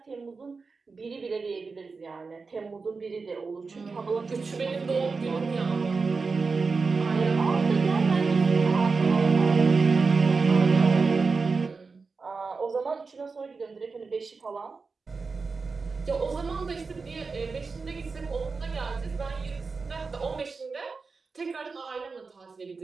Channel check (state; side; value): quieter; left; 4.5 dB